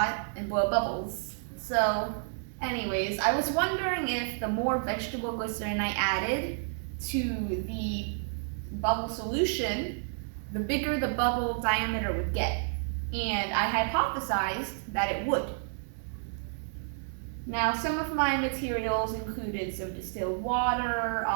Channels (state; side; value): silent; left; 58 dB below the other